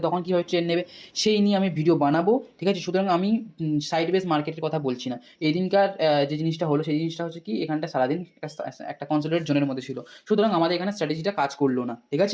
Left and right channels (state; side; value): identical; both; correlation 1.00